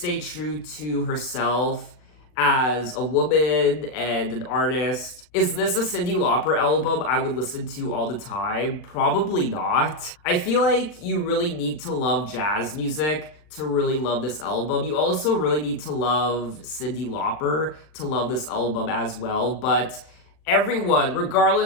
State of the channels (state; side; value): late; right; 39 ms